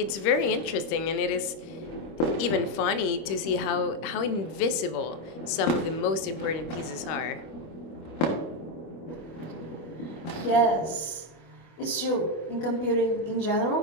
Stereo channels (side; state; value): right; late; 26 ms